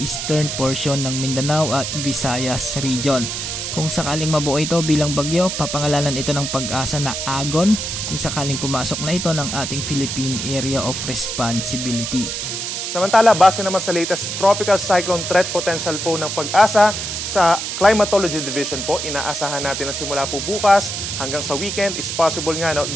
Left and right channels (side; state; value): right; noise; hiss, 4 dB below the sound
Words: portion ng Mindanao at Visayas region. Kung sakaling mabuo ito bilang bagyo, papangalanan ito ng Pag-asa na Agon kung sakaling pumasok na ito ng ating Philippine Area of Responsibility. Samantala, base naman sa latest Tropical Cyclone Threat Potential po ng Pag-asa, sa Climatology Division po, inaasahan natin na simula po bukas hanggang sa weekend is possible nga na